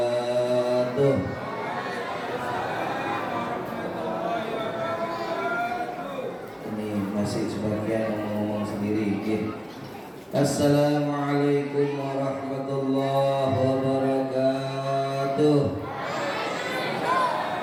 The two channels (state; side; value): identical; both; correlation 1.00